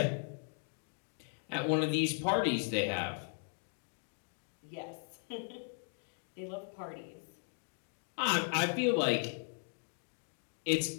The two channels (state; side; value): silent; right; 53 dB below the other